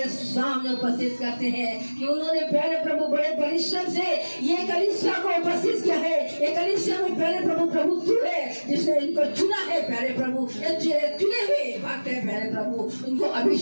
सामने उपस्थित करते हैं कि उन्होंने प्यारे प्रभु बड़े परिश्रम से ये कलीसिया को उपस्थित किया है। ये कलीसिया में प्यारे प्रभु तू है जिसने इनको चुना है प्यारे प्रभु, चुने हुए भक्त है प्यारे प्रभु, उनको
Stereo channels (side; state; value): both; inverted; correlation -1.00